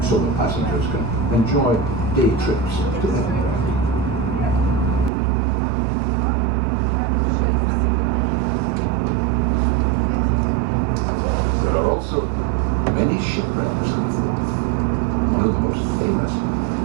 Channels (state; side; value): drops out; left; at 5.1 s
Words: so the passengers can enjoy day trips to Edinburgh. There are also many shipwrecks in the Forth. One of the most famous